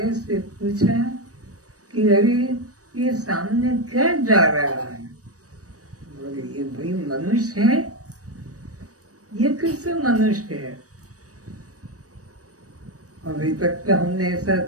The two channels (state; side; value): late; left; 0.66 ms